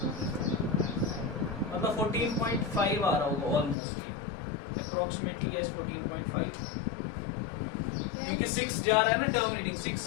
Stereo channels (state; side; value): drops out; right; at 3.8 s